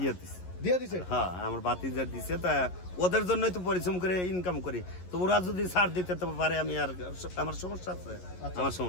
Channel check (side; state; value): right; late; 11 ms